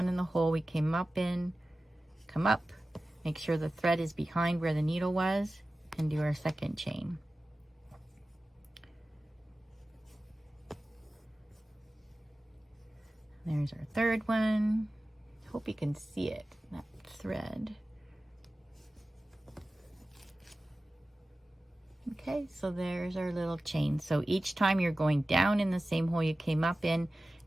in the hole we came up in, come up, make sure the thread is behind where the needle was, and do our second chain. There's our third one. Hope you can see it, that thread. Okay, so there's our little chain. So each time you're going down in the same hole you came up in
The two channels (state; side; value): normal; both; correlation 0.95